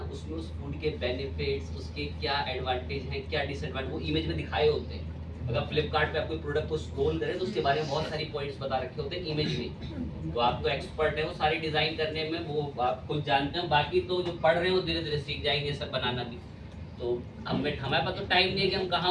उसमें उस फूड के बेनिफिट्स, उसके क्या एडवांटेज हैं, क्या डिसएडवांटेज, वो इमेज में दिखाए होते हैं। अगर फ्लिपकार्ट पे आप कोई प्रोडक्ट को स्क्रॉल करें तो उसके बारे में बहुत सारी पॉइंट्स बता रखे होते हैं इमेज में। तो आप तो एक्सपर्ट है वो सारी डिजाइन करने में, वो आप खुद जानते हैं। बाकी तो जो पढ़ रहे हैं वो धीरे धीरे सीख जाएंगे सब बनाना भी। तो हमारे पास तो टाइम नहीं है कि हम कहाँ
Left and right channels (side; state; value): both; identical; correlation 1.00